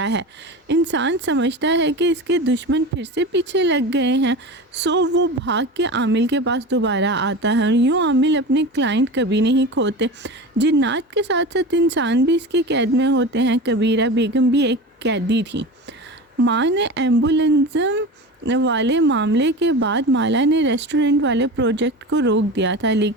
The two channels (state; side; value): normal; both; correlation 0.29